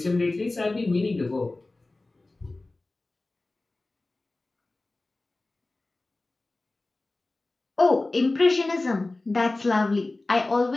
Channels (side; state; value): right; quieter; 3.0 dB